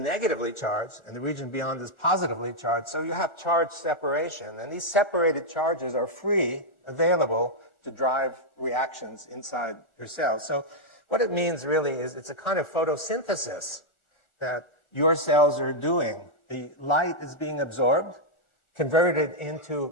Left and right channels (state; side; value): late; right; 1.4 ms